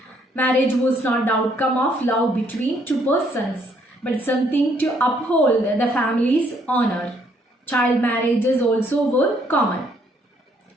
Marriage was not the outcome of love between two persons, but something to uphold the family's honor. Child marriages also were common.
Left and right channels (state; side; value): normal; both; correlation 0.68